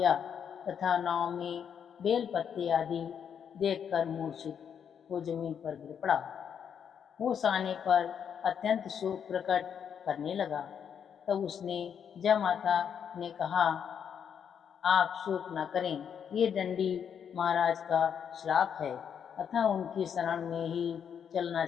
तथा नाव में बेल पत्ते आदि देखकर मूर्छित हो जमीन पर गिर पड़ा। होश आने पर अत्यंत शोक प्रकट करने लगा। तब उसने जयमाता ने कहा, आप शोक न करें, ये दंडी महाराज का श्राप है, अतः उनकी शरण में ही चलना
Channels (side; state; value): right; quieter; 7.9 dB